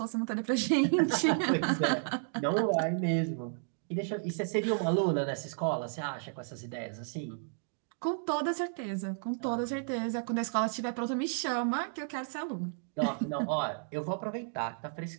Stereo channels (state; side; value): silent; left; digital silence